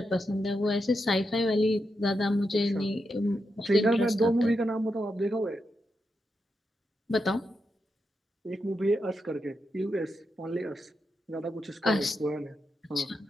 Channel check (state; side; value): normal; both; correlation 0.85